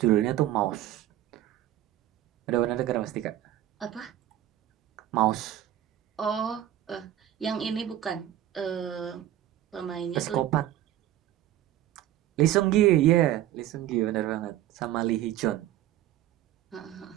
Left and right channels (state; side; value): quieter; left; 12.7 dB